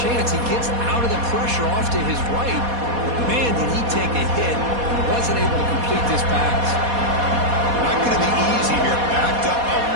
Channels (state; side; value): late; left; 4.2 ms